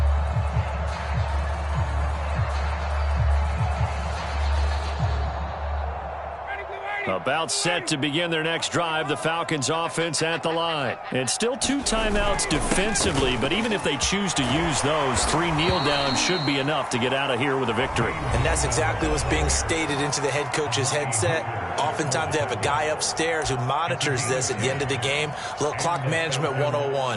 About set to begin their next drive, the Falcons offense at the line. And still 2 timeouts defensively, but even if they choose to use those, 3 kneel downs should be enough to get out of here with a victory. And that's exactly what's being stated into the head coach's headset. Oftentimes they have a guy upstairs who monitors this at the end of the game. A little clock management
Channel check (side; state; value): both; identical; correlation 1.00